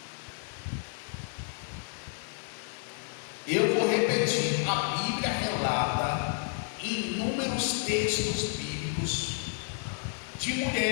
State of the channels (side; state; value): right; silent; 57 dB below the other